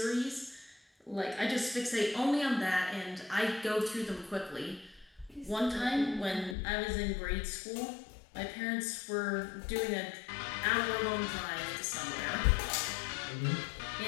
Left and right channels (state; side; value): drops out; right; at 6.6 s